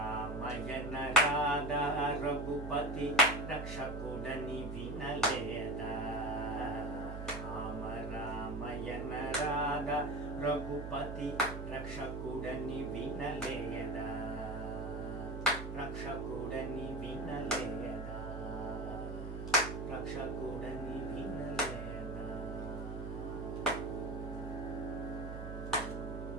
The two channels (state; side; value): noise; right; hum, 6 dB below the sound